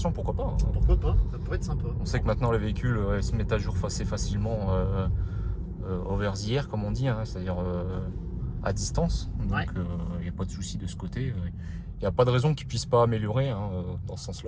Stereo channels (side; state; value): both; identical; correlation 1.00